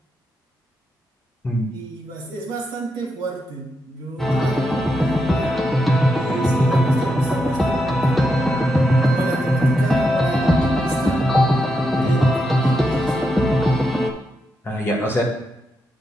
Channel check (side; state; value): both; normal; correlation 0.84